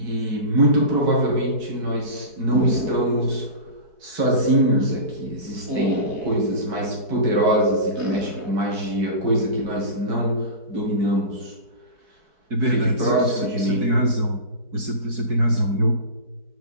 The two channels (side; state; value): left; late; 4.6 ms